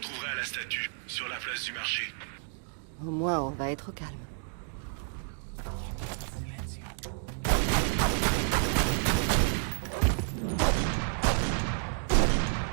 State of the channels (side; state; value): left; silent; 57 dB below the other